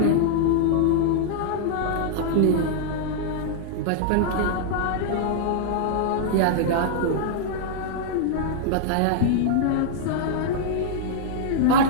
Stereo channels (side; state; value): both; different; correlation -0.01